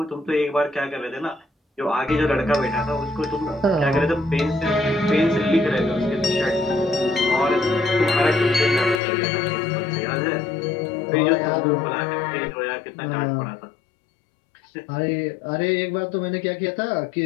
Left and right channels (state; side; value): drops out; right; at 9.0 s